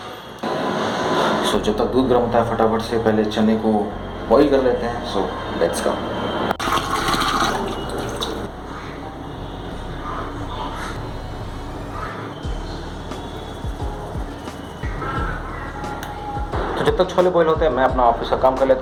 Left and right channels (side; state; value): both; identical; correlation 1.00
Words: सो जब तक दूध गर्म होता है, फटाफट से पहले चने को बॉईल कर लेते हैं। सो लेट्स गो। तो जब तक छोले बॉईल होते हैं, मैं अपना ऑफिस का काम कर